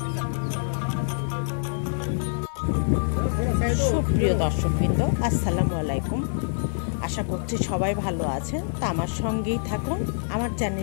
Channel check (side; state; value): right; silent; 61 dB below the other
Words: সুপ্রিয় দর্শকবৃন্দ, আসসালামু আলাইকুম। আশা করছি সবাই ভালো আছেন। তা আমার সঙ্গেই থাকুন, আমার